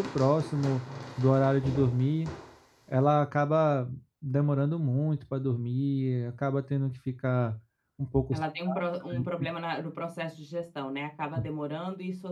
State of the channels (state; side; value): identical; both; correlation 1.00